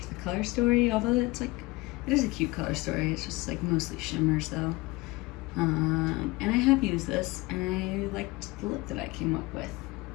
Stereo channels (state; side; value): quieter; right; 22.4 dB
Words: the color story, although it's like, it is a cute color story. It's just like mostly shimmers though. And I have used this, and I liked the look that I came up with.